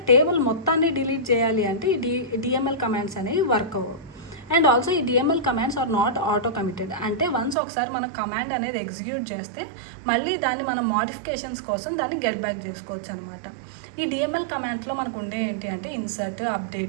టేబుల్ మొత్తాన్ని డిలీట్ చేయాలి అంటే ఈ డిఎంఎల్ కమాండ్స్ అనేవి వర్క్ అవ్వవు. అండ్ ఆల్సో ఈ DML commands are not auto committed. అంటే వన్స్ ఒకసారి మన కమాండ్ అనేది ఎగ్జిక్యూట్ చేస్తే మళ్ళీ దాన్ని మనం మోడిఫికేషన్స్ కోసం దాన్ని గెట్ బ్యాక్ చేసుకోవచ్చు అనమాట. ఈ డిఎంఎల్ కమాండ్స్లో మనకు ఉండే ఏంటి అంటే insert,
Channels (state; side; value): drops out; left; at 7.6 s